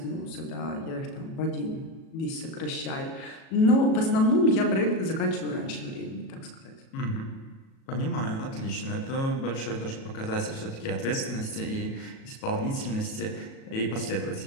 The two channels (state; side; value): late; right; 37 ms